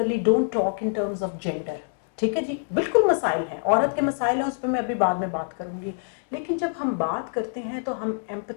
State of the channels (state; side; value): silent; right; digital silence